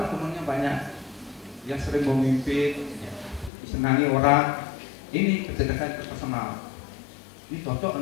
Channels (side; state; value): right; drops out; at 3.5 s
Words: temannya banyak. Dia sering memimpin, disenangi orang. Ini kecerdasan interpersonal. Ini cocok